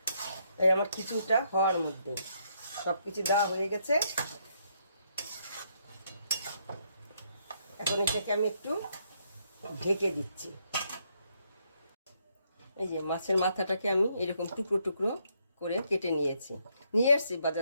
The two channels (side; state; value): both; inverted; correlation -0.74